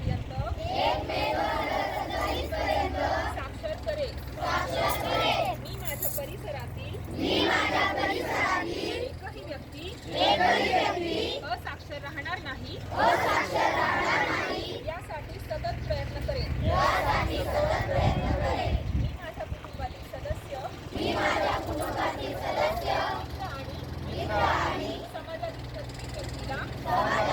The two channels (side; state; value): both; identical; correlation 1.00